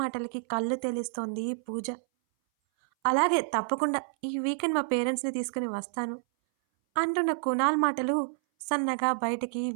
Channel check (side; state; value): left; silent; 59 dB below the other